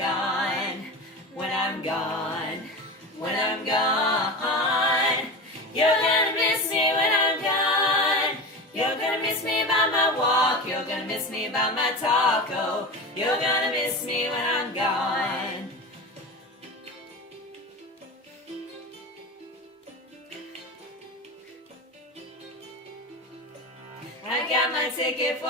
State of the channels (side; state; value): both; normal; correlation 0.27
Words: when I'm gone, when I'm gone. You're gonna miss me when I'm gone. You're gonna miss me by my walk, you're gonna miss me by my talk. Oh, you're gonna miss me when I'm gone. I got my ticket